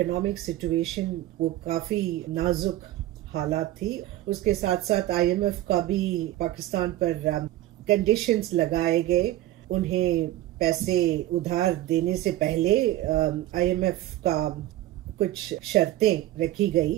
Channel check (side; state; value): left; quieter; 14.9 dB